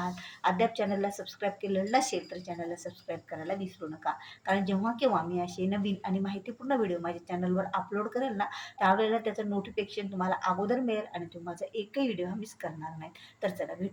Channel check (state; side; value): identical; both; correlation 1.00